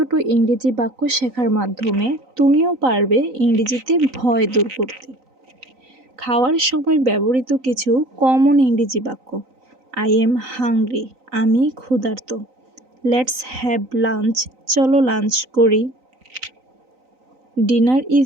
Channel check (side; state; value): left; late; 3.9 ms